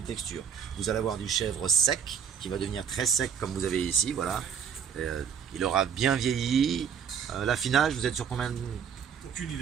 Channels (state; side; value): quieter; left; 7.5 dB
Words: textures. Vous allez avoir du chèvre sec, qui va devenir très sec comme vous avez ici, voilà. Il aura bien vieilli. L'affinage, vous êtes sur combien de... Aucune